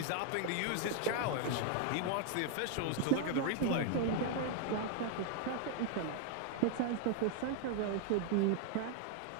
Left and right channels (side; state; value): both; different; correlation 0.00